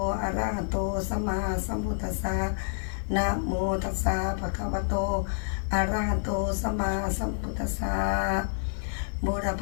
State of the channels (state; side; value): silent; right; 59 dB below the other